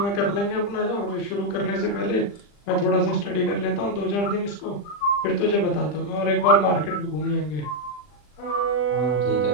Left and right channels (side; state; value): right; late; 40 ms